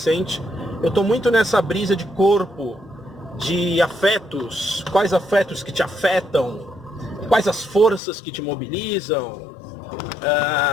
eu estou muito nessa brisa de corpo, de afetos, quais afetos que te afetam, quais as forças que te mobilizam.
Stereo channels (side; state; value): right; drops out; at 8.0 s